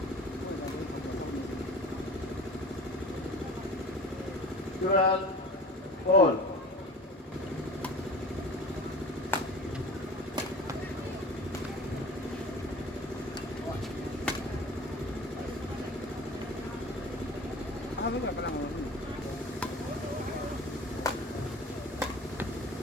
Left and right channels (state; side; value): normal; both; correlation 0.38